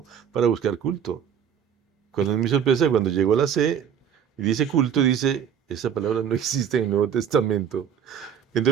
para buscar culto. Cuando es mi sorpresa, cuando llegó a la C y dice culto, dice, esa palabra no existe en el Nuevo Testamento.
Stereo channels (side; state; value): left; quieter; 8.3 dB